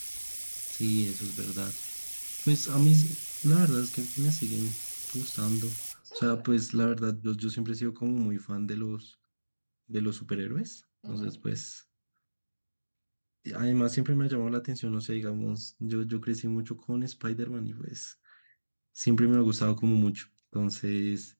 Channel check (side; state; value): both; inverted; correlation -1.00